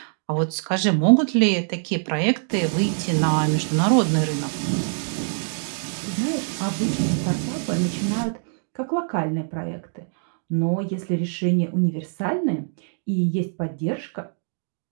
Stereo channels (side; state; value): left; silent; 63 dB below the other